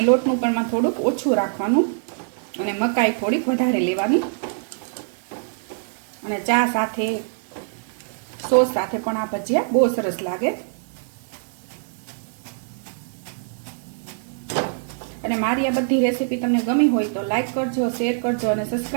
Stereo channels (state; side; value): silent; left; 63 dB below the other